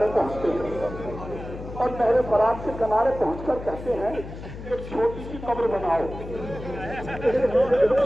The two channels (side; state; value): left; noise; hum, 11 dB below the sound